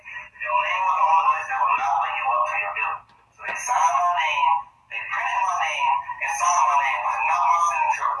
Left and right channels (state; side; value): identical; both; correlation 1.00